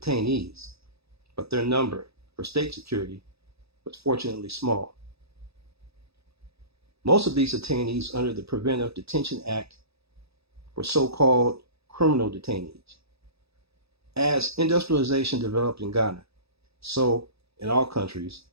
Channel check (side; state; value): left; late; 0.78 ms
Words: but their number for state security was fortunately small. Most of these detainees under the Preventive Detention Act were so-called criminal detainees. As industrialization developed in Ghana, so in all countries,